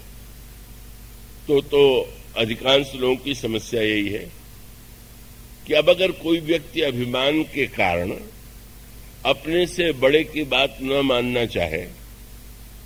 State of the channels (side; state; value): both; identical; correlation 1.00